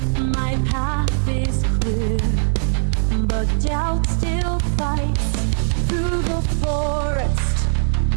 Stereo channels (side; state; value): left; silent; digital silence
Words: My path is clear, but doubt still fights. Through the forest,